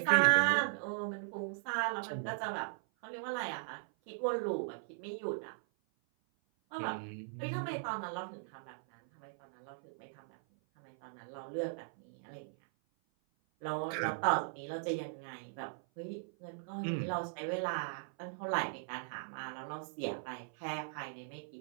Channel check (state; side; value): silent; left; 52 dB below the other